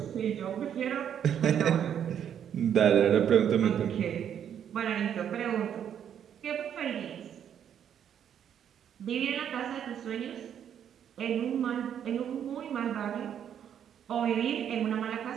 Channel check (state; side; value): quieter; left; 9.1 dB